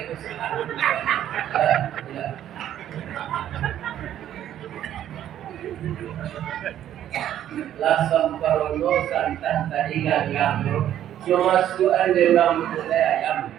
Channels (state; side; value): quieter; left; 11.3 dB